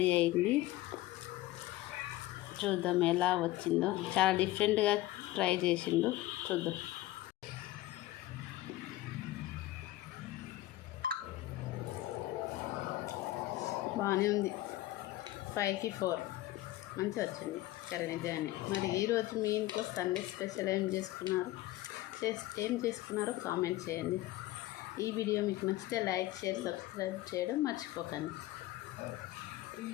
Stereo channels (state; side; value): quieter; right; 16.5 dB